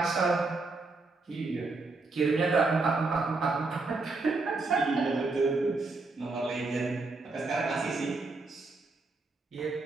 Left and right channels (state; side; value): quieter; left; 3.6 dB